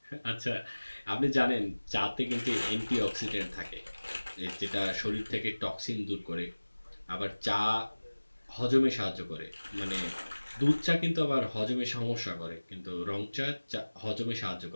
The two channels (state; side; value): inverted; both; correlation -1.00